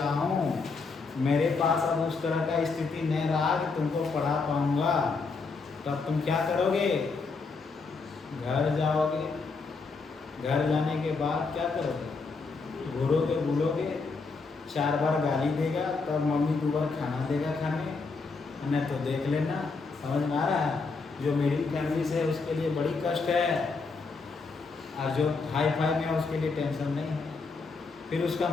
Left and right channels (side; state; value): right; quieter; 4.3 dB